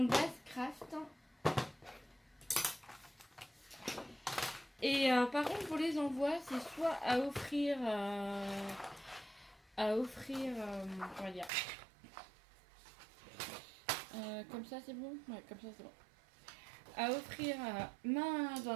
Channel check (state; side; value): drops out; left; at 11.5 s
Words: base craft. Et par contre, pour les envois, c'est soit à offrir, comment dire, comme ça c'est bon, ouais, comme ça c'est bon. À offrir main dans